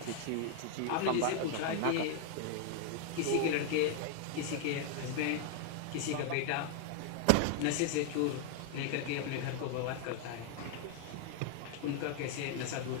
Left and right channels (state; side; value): different; both; correlation 0.00